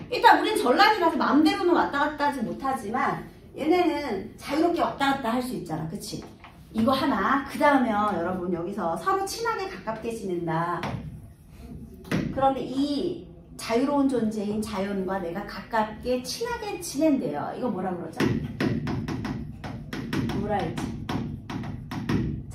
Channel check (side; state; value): both; identical; correlation 1.00